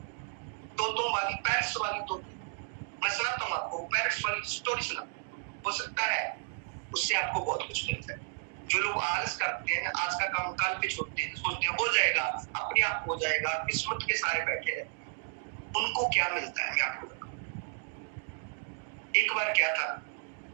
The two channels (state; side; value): silent; left; 56 dB below the other